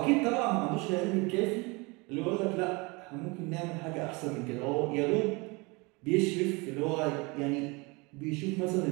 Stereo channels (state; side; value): quieter; left; 26.9 dB